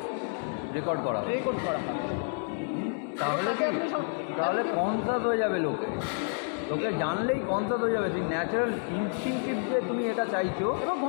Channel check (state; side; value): silent; right; 58 dB below the other